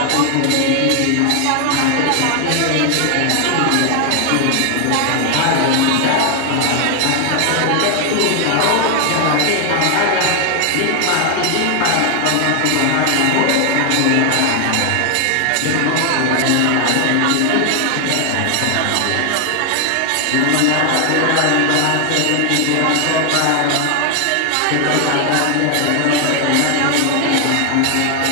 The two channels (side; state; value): both; different; correlation 0.00